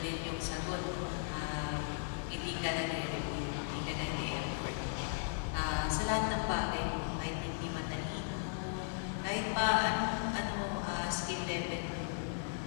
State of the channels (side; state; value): right; silent; digital silence